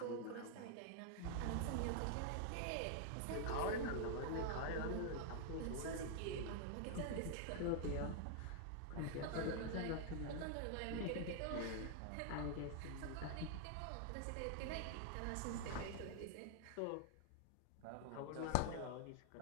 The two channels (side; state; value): both; different; correlation 0.00